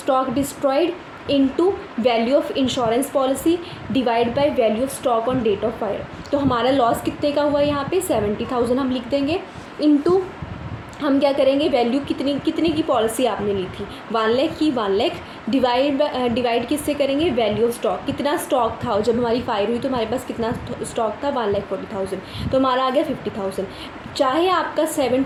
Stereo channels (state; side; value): identical; both; correlation 1.00